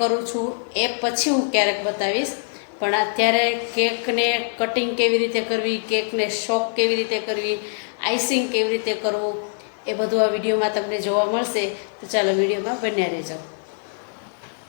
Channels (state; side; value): silent; right; digital silence